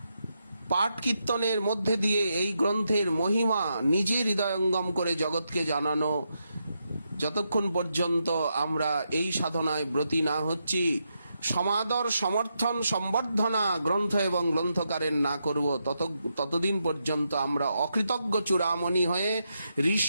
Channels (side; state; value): both; inverted; correlation -0.83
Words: পাঠ কীর্তনের মধ্যে দিয়ে এই গ্রন্থের মহিমা নিজে হৃদয়ঙ্গম করে জগৎকে জানানো। যতক্ষণ পর্যন্ত আমরা এই সাধনায় ব্রতী না হচ্ছি, সমাদর, সমর্থন, সম্বর্ধনা গ্রন্থ এবং গ্রন্থকারের না করব, ততদিন পর্যন্ত আমরা অকৃতজ্ঞ চূড়ামণি হয়ে